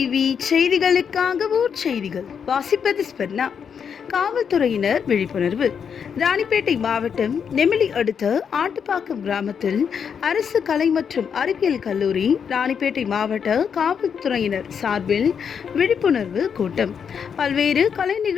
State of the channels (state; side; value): quieter; right; 7.1 dB